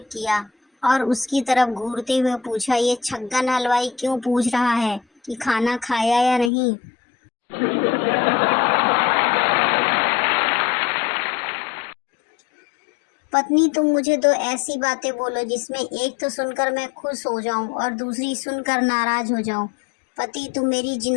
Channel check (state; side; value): drops out; right; at 6.5 s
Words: किया और उसकी तरफ घूरते हुए पूछा, ये छग्गन हलवाई क्यों पूछ रहा है कि खाना खाया या नहीं। पत्नी, तुम मुझे दो ऐसी बातें बोलो जिसमें एक तो सुनकर मैं खुश हो जाऊं और दूसरी सुनकर नाराज हो जाऊं। पति, तुम मेरी